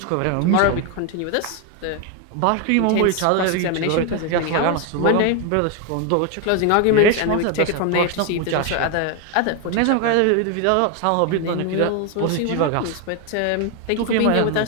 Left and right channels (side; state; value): both; different; correlation 0.01